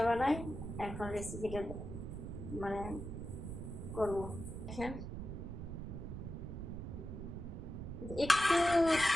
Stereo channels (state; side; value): noise; right; rumble, 7 dB below the sound